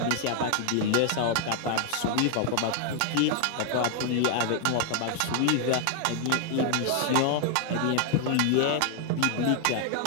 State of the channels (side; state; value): both; different; correlation 0.00